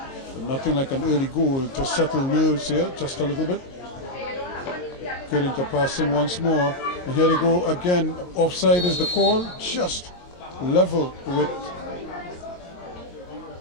But nothing like an early goal to settle nerves here, just a little bit. Good into passing once more. And here they go again. Offside is the call, just level with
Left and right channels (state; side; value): late; right; 22 ms